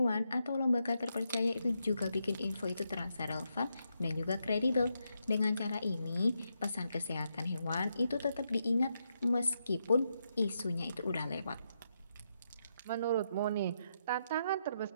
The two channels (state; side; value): inverted; both; correlation -0.82